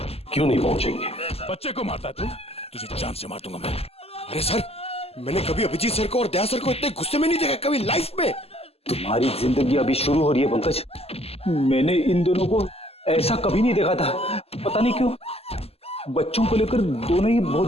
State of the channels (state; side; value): late; right; 0.29 ms